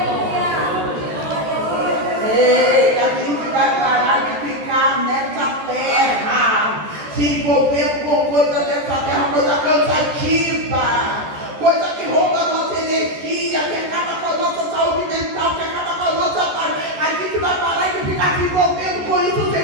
Ei, a gente vai parar de ficar nessa terra, se envolver com coisa dessa terra, coisa cansativa, coisa que rouba a nossa energia, que acaba com a nossa saúde mental, que acaba com a nossa paz. A gente vai parar de ficar se envolvendo com isso. O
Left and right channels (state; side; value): late; left; 14 ms